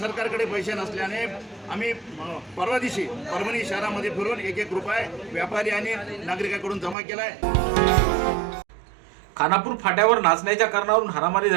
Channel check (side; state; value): left; drops out; at 7.0 s